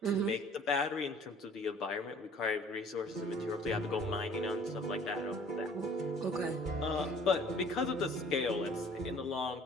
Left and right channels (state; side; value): normal; both; correlation 0.53